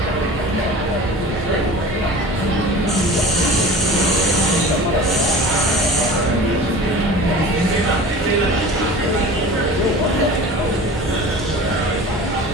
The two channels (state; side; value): normal; both; correlation 0.39